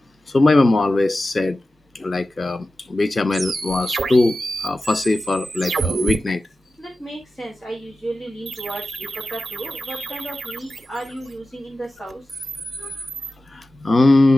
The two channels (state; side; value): normal; both; correlation 0.94